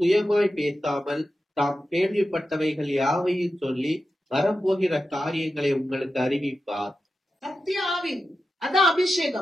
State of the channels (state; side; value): normal; both; correlation 0.91